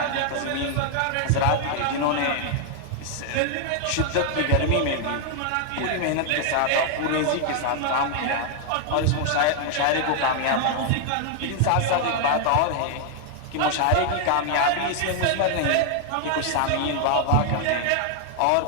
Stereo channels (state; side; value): different; both; correlation 0.00